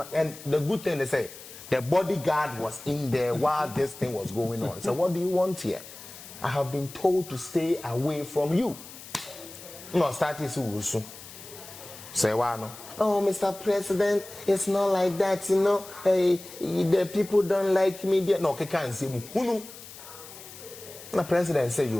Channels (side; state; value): left; noise; hiss, 16 dB below the sound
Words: and the good thing they say the bodyguard was in there while this thing was going on. So what do you want here? I have been told to stay away from you. No start is usu. Say why no? Oh, Mr. President, it's not like that, you know. Hey, the people don't like me. No, can't see who. The president say